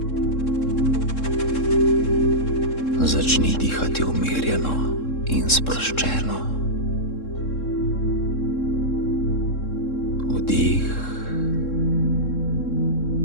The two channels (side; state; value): right; late; 3.7 ms